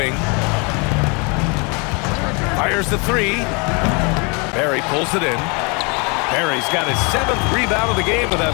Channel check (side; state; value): right; quieter; 31.8 dB